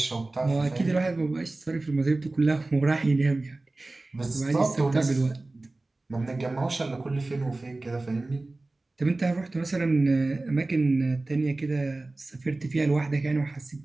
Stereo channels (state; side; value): quieter; left; 3.0 dB